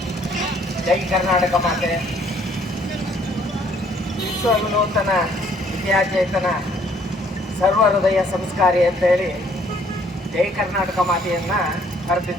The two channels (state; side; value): normal; both; correlation 0.63